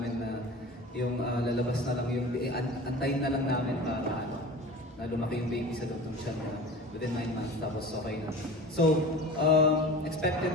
na yung lalabas na lang yung, antayin na lang namin para na lumaki yung baby sa loob ng siya na within 9 months, tapos okay na. So,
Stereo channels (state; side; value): normal; both; correlation 0.36